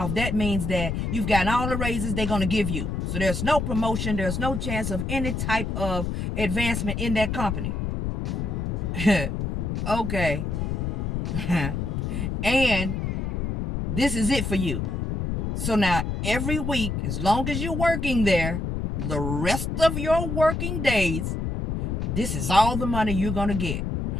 That means that you've gotten all the raises they're going to give you. So there's no promotion. There's no chance of any type of advancement in that company. Okay. And this is it for you. So now every week, as long as you're working there, the rest of your working days, this is all the money you're going to get.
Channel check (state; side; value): noise; left; rumble, 2 dB below the sound